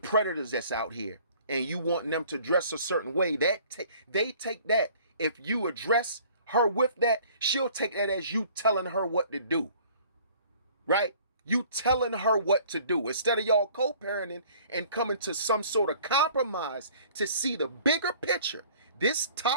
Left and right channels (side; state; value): both; inverted; correlation -0.53